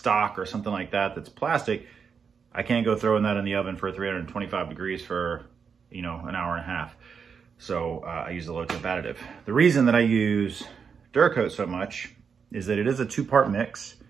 or something like that that's plastic, I can't go throwing that in the oven for 325 degrees for, you know, an hour and a half. So I use the low temp additive. The reason that I use Gunkote so much is that it is a two-part mix.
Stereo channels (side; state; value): left; quieter; 6.2 dB